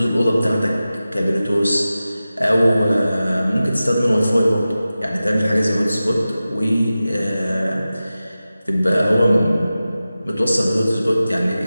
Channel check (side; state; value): both; inverted; correlation -0.95